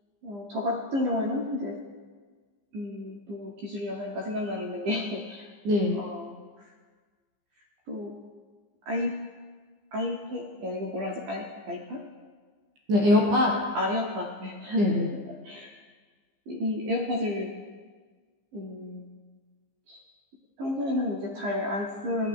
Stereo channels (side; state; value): left; late; 15 ms